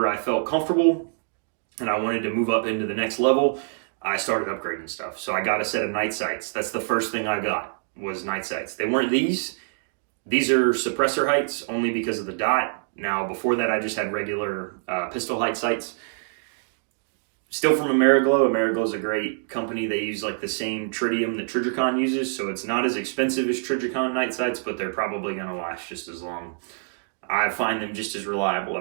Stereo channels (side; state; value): left; silent; digital silence